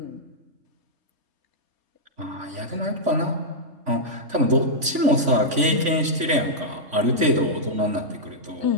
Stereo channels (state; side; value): late; left; 3.5 ms